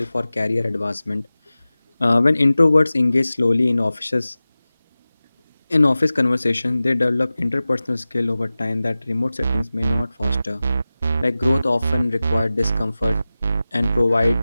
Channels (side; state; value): both; inverted; correlation -0.96